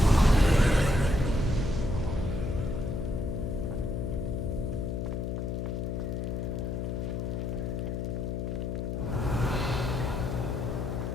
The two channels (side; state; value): left; noise; hum, 2 dB below the sound